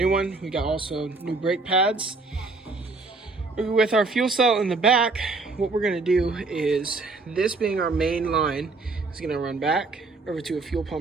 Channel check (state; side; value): quieter; left; 3.7 dB